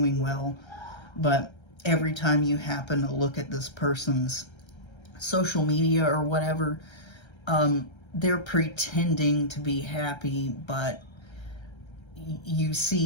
well. But every time you happen to look at this person's social media or whatever, they're pretending to be happy, but you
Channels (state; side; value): late; right; 1.3 ms